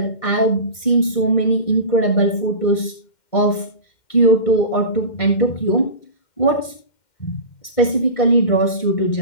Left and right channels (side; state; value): right; late; 2.1 ms